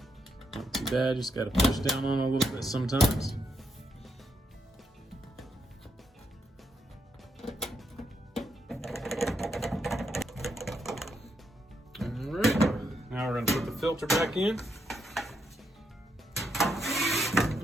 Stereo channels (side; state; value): both; normal; correlation 0.79